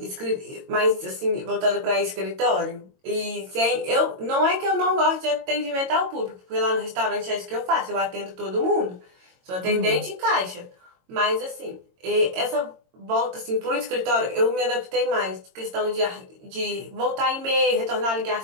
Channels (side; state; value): left; late; 22 ms